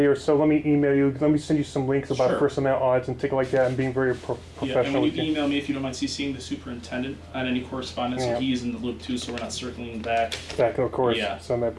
or so. Let me email you. Let me send you some links about Sure. First Amendment audits and things like that. And being very Yeah, and professional when with you you. email me, if you don't mind CCing the superintendent on any correspondence, Yeah. so he's in the loop too, so we're not circling back. Back, of course. Yeah. So that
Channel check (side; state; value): both; identical; correlation 1.00